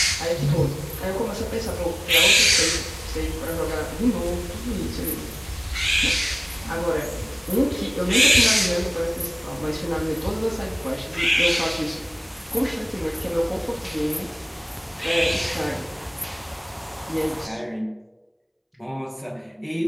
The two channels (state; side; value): identical; both; correlation 1.00